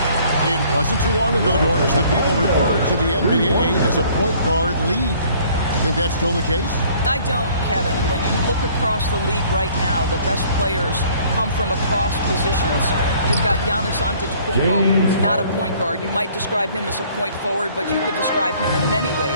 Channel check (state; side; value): inverted; both; correlation -0.57